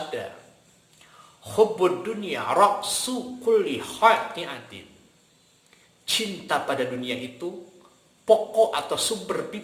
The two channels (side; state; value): both; identical; correlation 1.00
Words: "Hubbud dunya ra'su kulli khati'atin." Cinta pada dunia itu pokok atau sumber